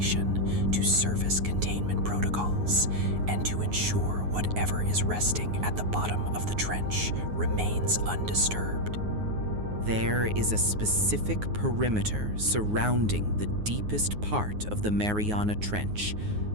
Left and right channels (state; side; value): late; left; 9.5 ms